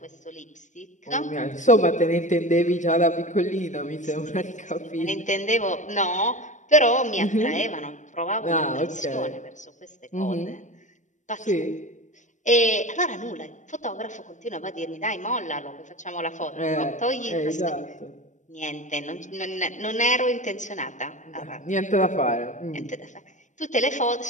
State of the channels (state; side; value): late; right; 0.35 ms